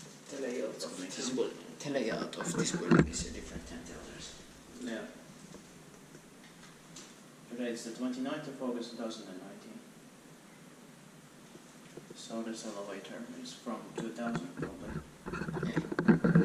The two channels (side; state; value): both; identical; correlation 1.00